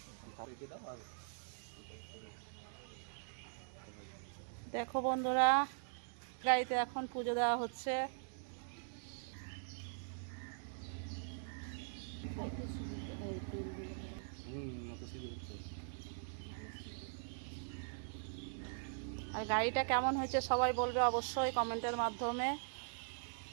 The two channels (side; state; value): left; silent; digital silence